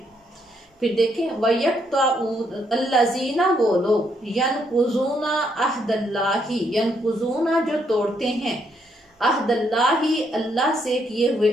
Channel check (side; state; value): both; normal; correlation 0.74